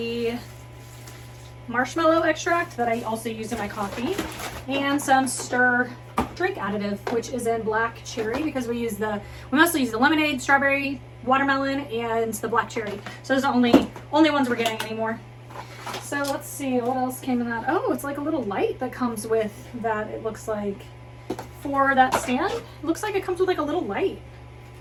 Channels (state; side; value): identical; both; correlation 1.00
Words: marshmallow extract that I also use in my coffee. And some stir drink additive, which is in black cherry, because we mostly use the lemonade, strawberry, watermelon, and the black cherry. So those are the only ones we're getting anymore. So let's see what else came in that. Oh, it's like a little light that comes with that. It looks like for that stand. It looks like it comes with like a little light